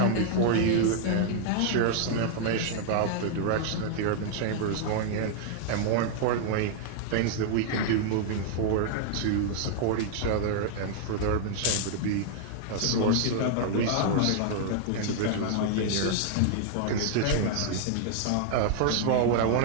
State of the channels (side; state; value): both; different; correlation 0.00